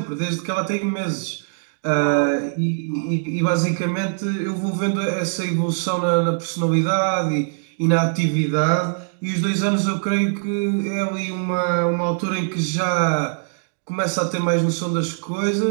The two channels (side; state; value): left; silent; digital silence